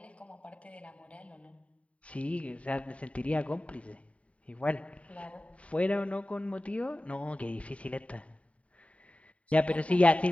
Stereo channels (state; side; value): late; right; 0.065 ms